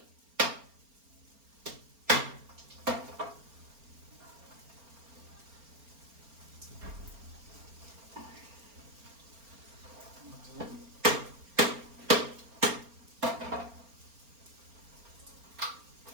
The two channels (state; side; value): late; left; 4.3 ms